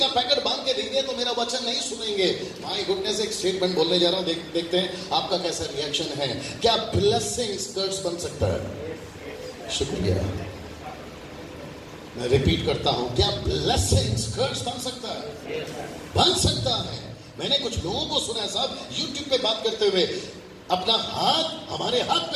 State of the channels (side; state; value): both; identical; correlation 1.00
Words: पैकेट बांध के दे दिया तो मेरा वचन नहीं सुनेंगे। माय गुडनेस, एक स्टेटमेंट बोलने जा रहा हूं, देखते हैं आपका कैसा रिएक्शन है। क्या ब्लेसिंग स्कर्ट्स बन सकता है? शुक्रिया, मैं रिपीट करता हूं, क्या ब्लेसिंग स्कर्ट्स बन सकता है? बन सकता है। मैंने कुछ लोगों को सुना है साहब, यूट्यूब पे बात करते हुए, अपना हाथ हमारे हाथ